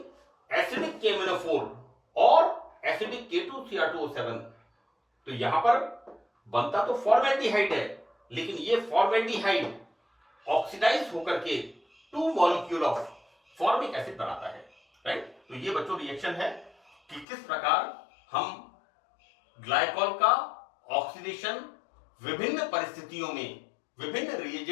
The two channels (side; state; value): right; drops out; at 17.2 s